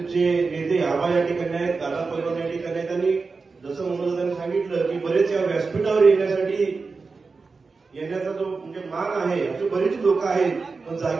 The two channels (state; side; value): quieter; left; 4.4 dB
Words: नेते आबा या ठिकाणी आहेत, दादा पैलवान या ठिकाणी आहेत। आणि जसं मनोजदादांनी सांगितलं की बरेच या व्यासपीठावर येण्याचा जो म्हणजे मान आहे, असे बरेच लोक आहेत, पण